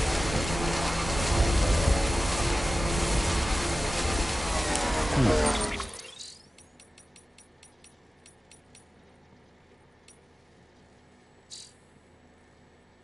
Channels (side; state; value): both; normal; correlation 0.95